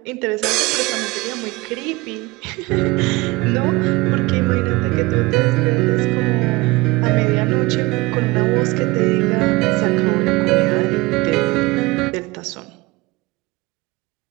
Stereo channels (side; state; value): left; quieter; 22.3 dB